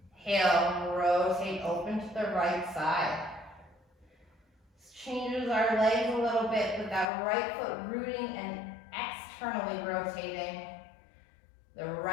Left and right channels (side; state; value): right; drops out; at 7.1 s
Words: rotate, open to the right side. This changes our legs a little bit with that right foot rooting and externally rotating. The